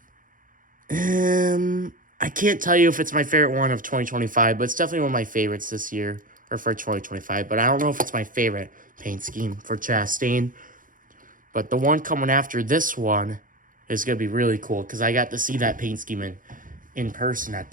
I can't tell you if it's my favorite one of 2025, but it's definitely one of my favorites this year, or for 2025, but I don't know if it's my favorite paint scheme for Chastain. But the one coming after this one is going to be really cool because I got to see that paint scheme in person at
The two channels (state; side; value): late; left; 0.39 ms